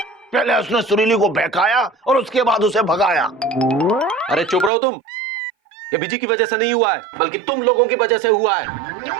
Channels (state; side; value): drops out; left; at 4.7 s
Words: पहले उसने सुरीली को बहकाया और उसके बाद उसे भगाया। अरे चुप रहो तुम। ये बिजी की वजह से नहीं हुआ है, बल्कि तुम लोगों की वजह से हुआ है।